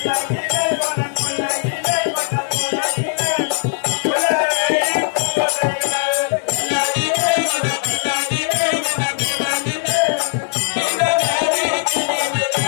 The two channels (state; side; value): silent; right; digital silence